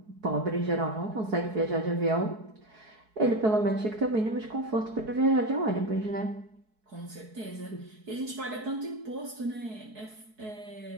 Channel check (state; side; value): late; left; 4.6 ms